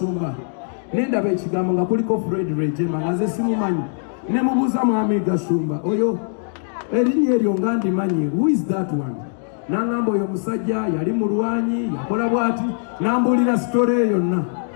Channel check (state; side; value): silent; right; 62 dB below the other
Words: nendaba ekigambo nga kuliko Fred Rwigema nga nze simumanyi. Ne mubuuza Mwami Gashumba, oyo erinnya eryo nga ndimanyi, who is that one? N'angamba oyo musajja yali mulwanyi yakola bw'ati, n'ambuulira sitole eyo yonna.